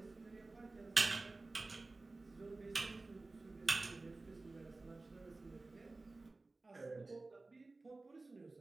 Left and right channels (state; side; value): quieter; left; 3.3 dB